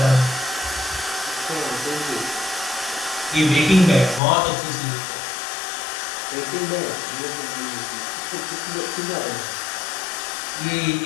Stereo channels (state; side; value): drops out; right; at 4.2 s